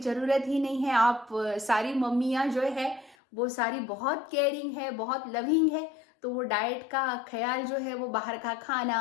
ही नहीं है। आप सारी मम्मियाँ जो है वो सारी बहुत केयरिंग है, बहुत लविंग है, तो वो डाइट का ख्याल जो है वो बाहर का खाना,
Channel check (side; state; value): right; drops out; at 3.2 s